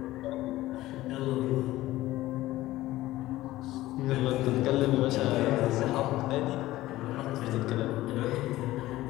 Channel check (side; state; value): right; quieter; 16.5 dB